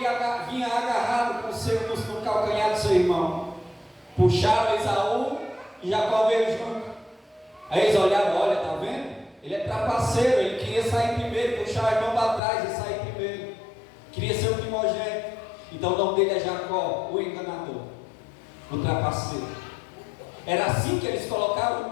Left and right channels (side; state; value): right; drops out; at 12.4 s